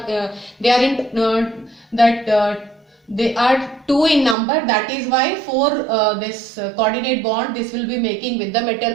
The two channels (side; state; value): left; drops out; at 4.4 s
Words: they are in they are 2 in number, that is why for this coordinate bond this will be making with the